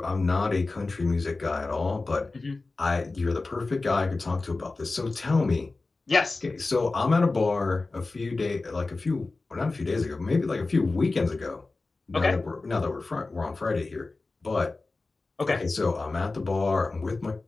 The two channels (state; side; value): quieter; right; 3.5 dB